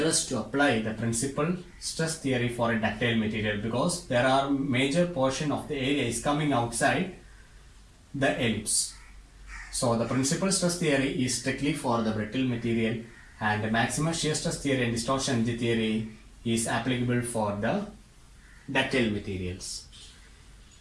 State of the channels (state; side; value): identical; both; correlation 1.00